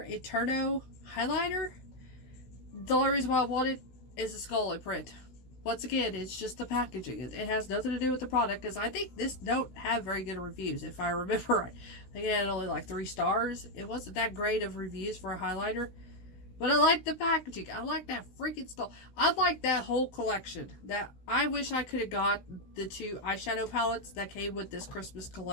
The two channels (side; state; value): right; late; 16 ms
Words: Eterno highlighter. The only reason why I want it is the skull print. Once again, it's just the packaging. It has nothing to do with the product because I think this don't have very good reviews if I remember right. I think it had only like 3 stars. It wasn't that great of reviews for a highlighter. But I like the packaging. I like that freaking skull. I like that whole collection. That I wish I could have got the 2 eyeshadow palettes that came with this Christmas